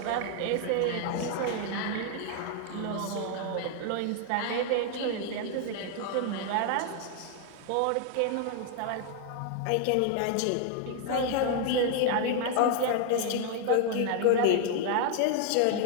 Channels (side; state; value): both; different; correlation 0.00